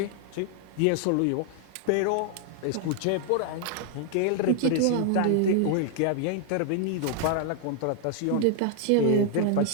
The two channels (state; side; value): different; both; correlation 0.00